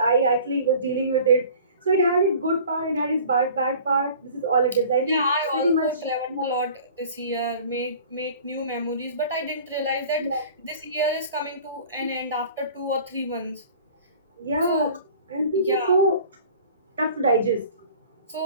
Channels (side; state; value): both; inverted; correlation -0.46